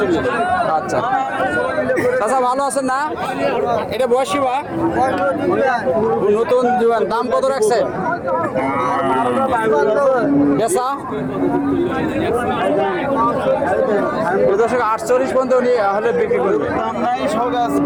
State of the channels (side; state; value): both; identical; correlation 1.00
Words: আচ্ছা চাচা ভালো আছেন না? এটা বয়সী বা নতুন জীবন, দাম কত রাখছে? বেচা 48 পর্যন্ত উনি হলে বিক্রি করবে।